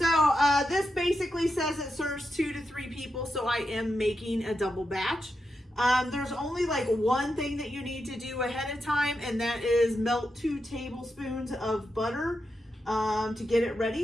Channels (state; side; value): normal; both; correlation 0.87